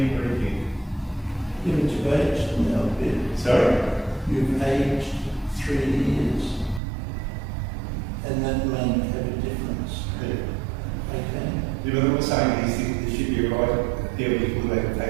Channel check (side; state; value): left; drops out; at 6.8 s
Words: or anything. Yeah, but you've aged now a bit. Sorry? You've aged 3 years. And that may have a difference. Yeah. Okay? Yeah, but I'm not saying there should be a right appeal before they can